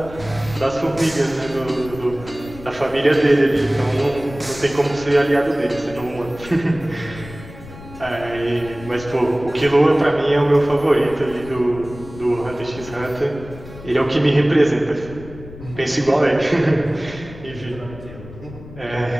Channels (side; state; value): left; noise; rumble, 16 dB below the sound